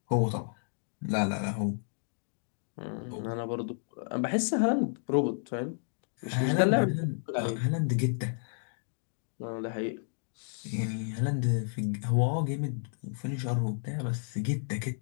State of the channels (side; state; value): right; silent; digital silence